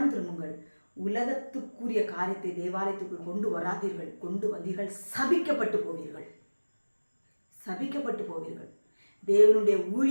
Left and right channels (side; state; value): both; inverted; correlation -1.00